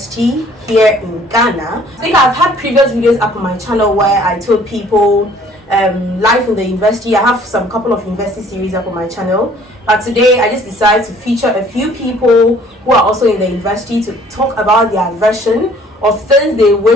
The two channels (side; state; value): both; normal; correlation 0.57